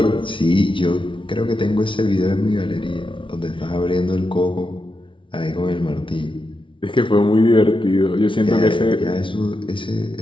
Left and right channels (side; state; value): right; late; 0.25 ms